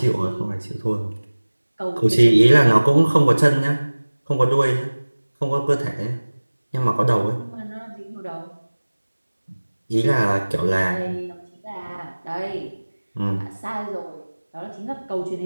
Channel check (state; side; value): inverted; both; correlation -1.00